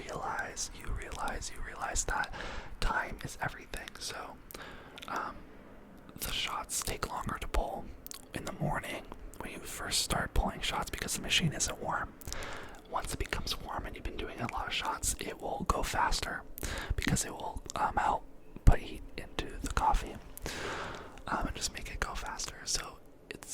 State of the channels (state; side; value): identical; both; correlation 1.00